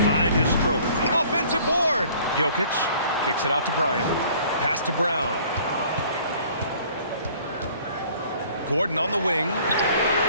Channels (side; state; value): both; inverted; correlation -0.54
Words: find his stroke. Offensive board. Jokic kicks it out to Bryant. Pass to Brown. Gordon on the wing.